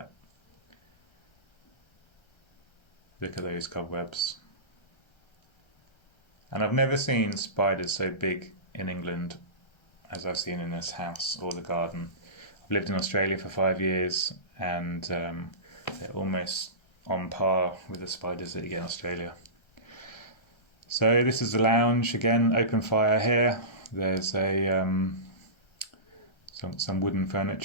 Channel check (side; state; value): right; late; 1.3 ms